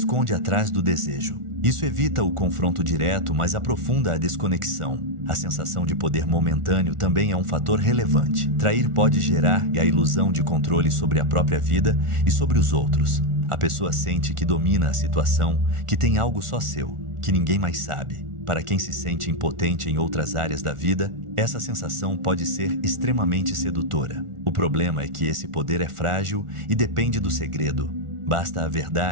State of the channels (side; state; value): left; late; 1.4 ms